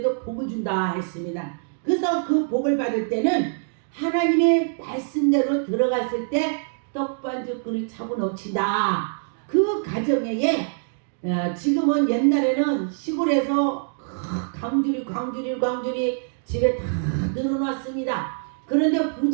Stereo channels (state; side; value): silent; left; digital silence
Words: 복을 준다 했습니다. 그래서 그 복을 받을 때는 하나님의 말씀대로 들어갔을 때 떡반죽 그릇 차고 넘친다. 그 가정에 지금은 옛날에는 시골에서 광주리 집에 다 늘어놨습니다. 그런데